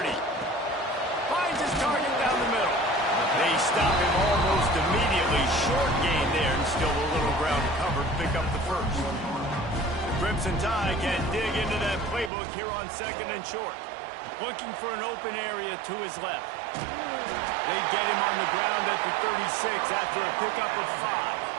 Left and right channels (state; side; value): drops out; left; at 12.3 s